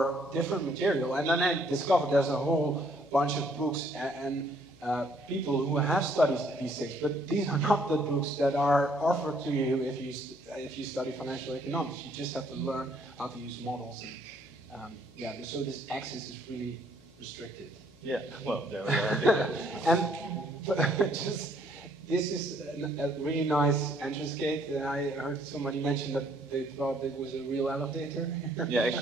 different material, and then I discovered there's a whole bunch of books and people who have studied these things, but these are not the books that are offered to you if you study financial economics. You just have to learn how to use models, and so this access is really restricted. Yeah, well, there we are. And this is a really nice entrance gate. I heard somebody mention that they thought it was a real elevator. Yeah,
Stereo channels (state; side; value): noise; left; hum, 27 dB below the sound